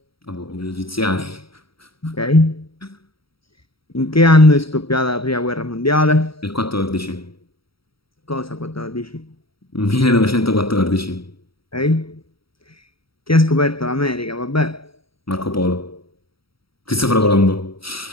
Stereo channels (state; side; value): late; right; 0.75 ms